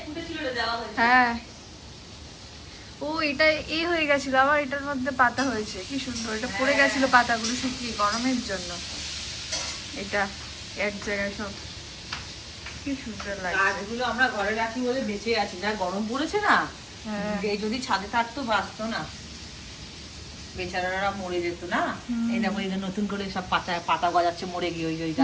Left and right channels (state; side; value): identical; both; correlation 1.00